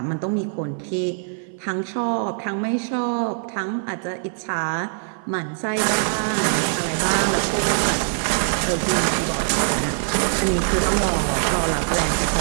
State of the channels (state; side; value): silent; left; 58 dB below the other